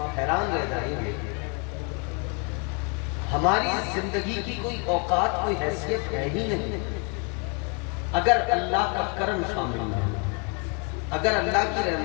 حیران رہ جائیں گے۔ ہماری زندگی کی کوئی اوقات، کوئی حیثیت ہے ہی نہیں اگر اللہ کا کرم شامل نہ ہو، اگر اللہ کی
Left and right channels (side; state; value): right; quieter; 35.8 dB